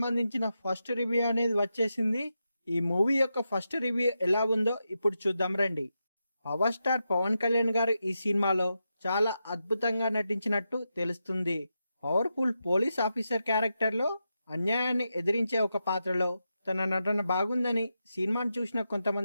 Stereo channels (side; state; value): both; inverted; correlation -0.87